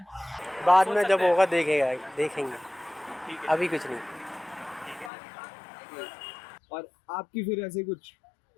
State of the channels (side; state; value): right; drops out; at 5.1 s